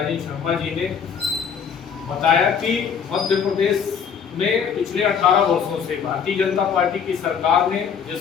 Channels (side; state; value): right; quieter; 7.1 dB